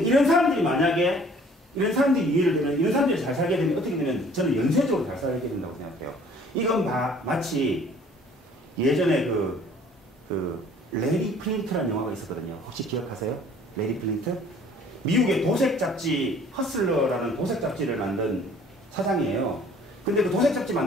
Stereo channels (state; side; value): normal; both; correlation 0.54